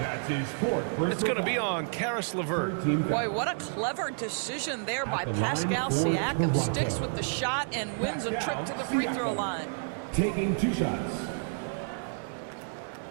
That's his fourth personal It's going to be foul. on Karis LeVert. Boy, what a clever decision there by Pascal Siakam. Sticks with the shot and wins a trip to the free throw line. Taking 2 shots.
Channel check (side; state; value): left; silent; digital silence